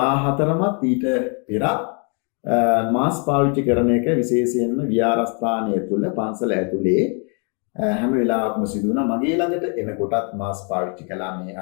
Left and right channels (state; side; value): quieter; right; 38.5 dB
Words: ඊට පෙරත් මාස්ක් පාවිච්චි කරන එක විශේෂයෙන්ම විහාරස්ථානය තුළ පන්සල ඇතුලේ හැම වෙලාවකම සිදු වුණා. මගේ ළඟට එනකොටත් මාස්ක් පාවිච්චි කළා මේ